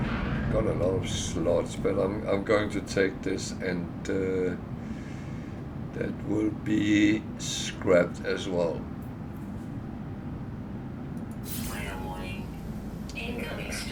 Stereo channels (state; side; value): identical; both; correlation 1.00